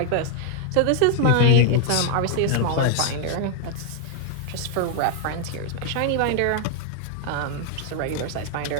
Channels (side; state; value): both; different; correlation 0.00